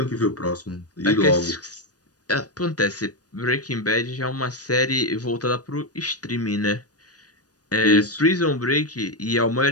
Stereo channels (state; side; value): late; right; 0.68 ms